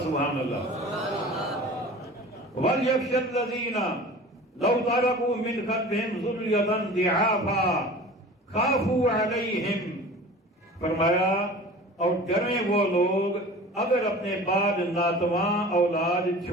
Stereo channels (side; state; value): both; normal; correlation 0.40